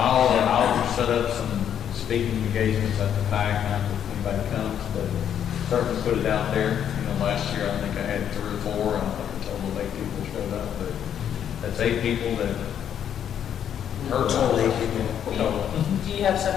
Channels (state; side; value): quieter; right; 9.3 dB